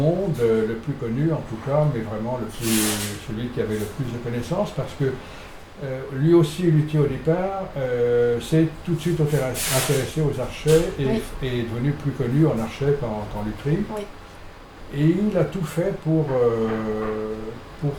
le plus connu en tout cas, mais vraiment celui qui avait le plus de connaissances, parce que lui aussi, luthier au départ, s'est tout de suite intéressé aux archets et est devenu plus connu en archet qu'en lutherie. Oui. Et il a tout fait pour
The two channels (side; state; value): both; identical; correlation 1.00